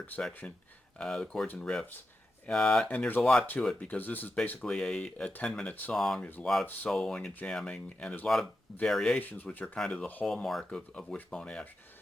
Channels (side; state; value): both; normal; correlation 0.89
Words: section, the chords and riffs. And there's a lot to it because this is basically a 10-minute song. There's a lot of soloing and jamming, and there's a lot of variations, which are kind of the hallmark of Wishbone Ash.